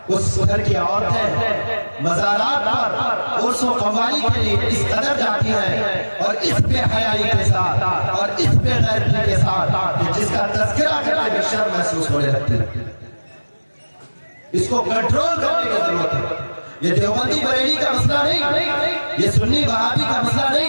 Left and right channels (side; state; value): both; inverted; correlation -1.00